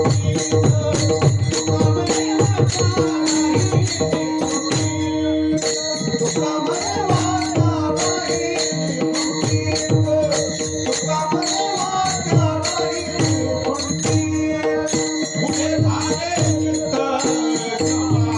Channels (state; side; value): identical; both; correlation 1.00